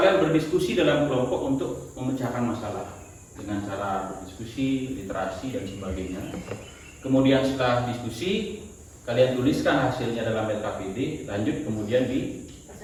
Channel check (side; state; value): both; identical; correlation 1.00